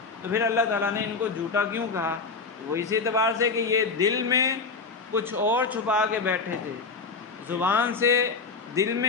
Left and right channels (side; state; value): right; quieter; 4.6 dB